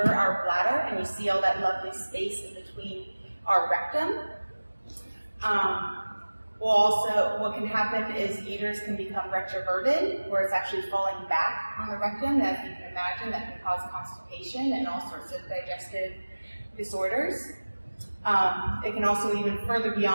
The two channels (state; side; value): inverted; both; correlation -1.00